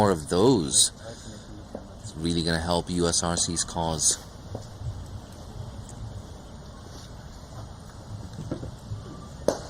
of those. It's really going to help USRC's cause.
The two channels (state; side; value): identical; both; correlation 1.00